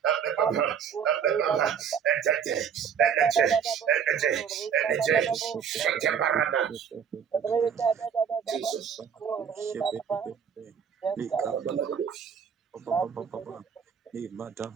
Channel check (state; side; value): quieter; left; 7.4 dB